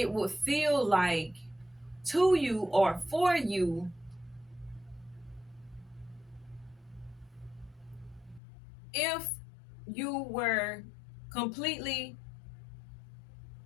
would feel like to you or for you if you were completely,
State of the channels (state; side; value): drops out; right; at 8.4 s